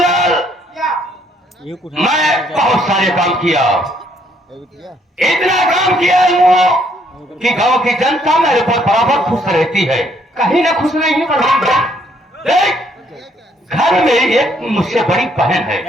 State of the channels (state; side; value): normal; both; correlation 0.68